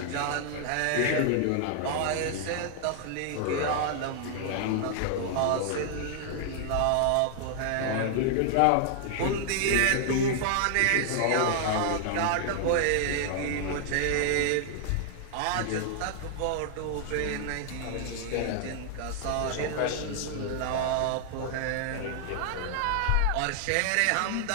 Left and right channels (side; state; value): both; different; correlation 0.00